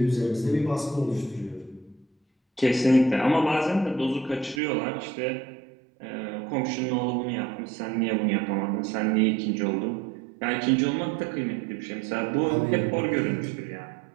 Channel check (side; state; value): left; drops out; at 4.6 s